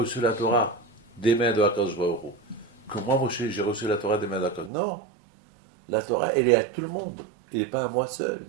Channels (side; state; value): left; drops out; at 4.7 s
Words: la Torah des mains de HaKadosh Baruch Hu? Que moi, Moshe, j'ai reçu la Torah des mains de HaKadosh. Non, la Torah, elle est à tout le monde, elle n'est pas à moi seul.